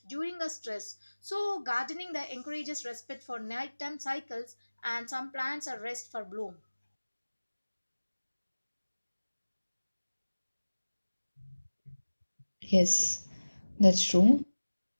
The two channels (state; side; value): inverted; both; correlation -1.00